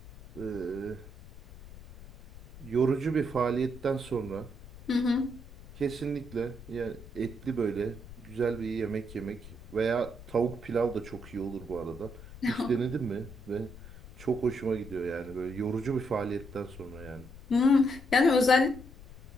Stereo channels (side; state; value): left; noise; rumble, 17 dB below the sound